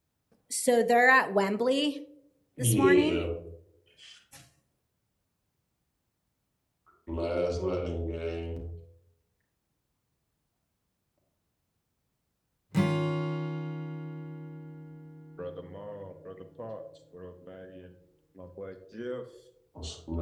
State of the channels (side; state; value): both; identical; correlation 1.00